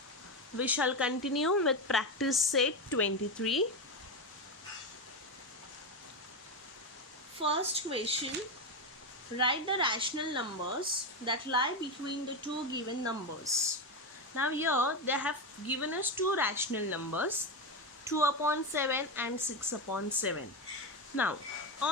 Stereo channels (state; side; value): normal; both; correlation 0.13